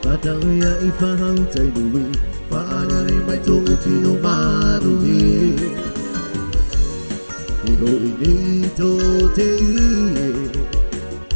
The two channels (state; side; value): inverted; both; correlation -1.00